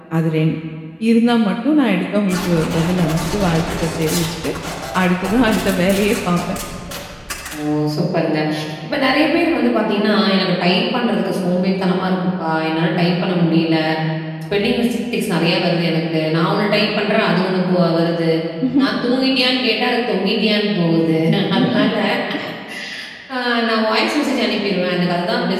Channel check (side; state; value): both; identical; correlation 1.00